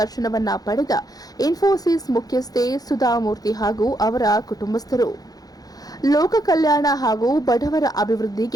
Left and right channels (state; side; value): late; right; 0.18 ms